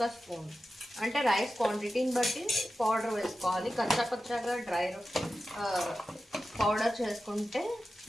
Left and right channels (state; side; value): normal; both; correlation 0.93